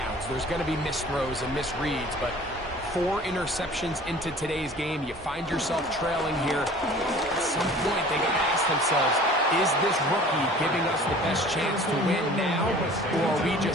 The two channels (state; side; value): normal; both; correlation 0.46